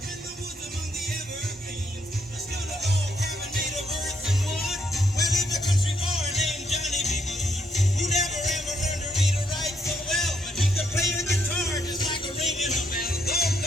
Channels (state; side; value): normal; both; correlation 0.74